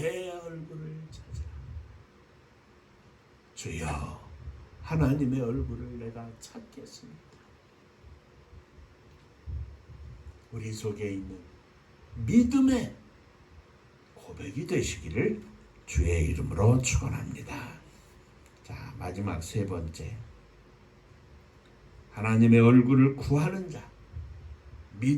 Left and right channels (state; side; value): identical; both; correlation 1.00